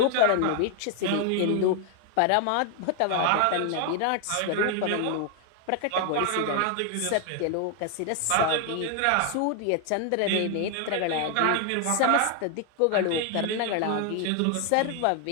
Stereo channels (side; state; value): both; different; correlation 0.00